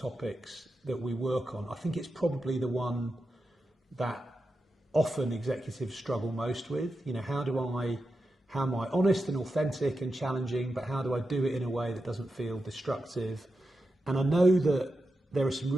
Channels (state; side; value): normal; both; correlation 0.89